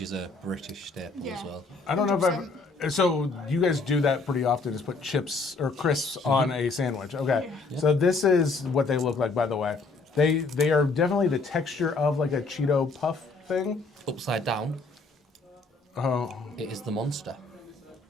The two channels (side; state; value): right; quieter; 3.8 dB